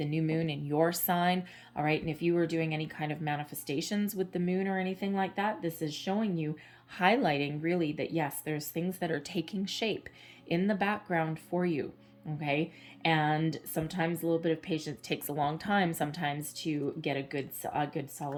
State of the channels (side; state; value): both; identical; correlation 1.00